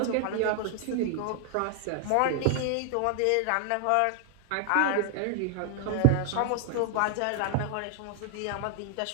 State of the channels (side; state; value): both; different; correlation 0.00